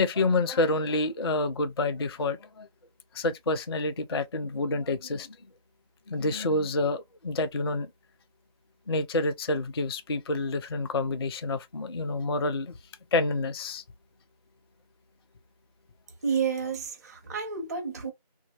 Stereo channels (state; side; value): inverted; both; correlation -0.39